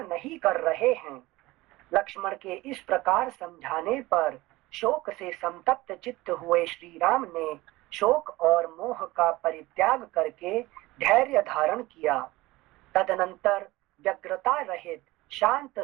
नहीं कर रहे हैं। लक्ष्मण के इस प्रकार समझाने पर शोक से संतप्त चित्त हुए श्री राम ने शोक और मोह का परित्याग करके धैर्य धारण किया। तदनंतर व्यग्रता रहित शांत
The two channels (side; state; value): left; quieter; 19.6 dB